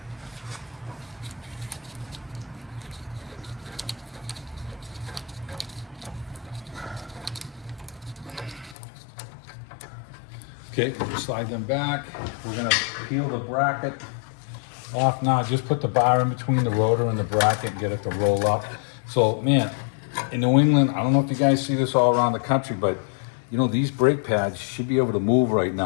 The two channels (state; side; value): drops out; right; at 8.8 s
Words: Okay, we'll slide them back. We're gonna peel the bracket off now. Just put the bar in between the rotor and the bracket and get it to roll up. So, man, in New England, I don't know if you guys see this all around the country, but you know, these brake pads should be able to move right